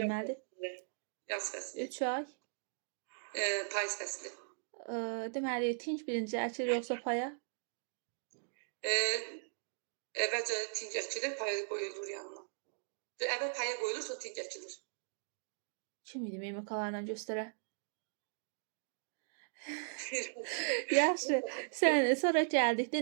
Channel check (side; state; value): left; silent; digital silence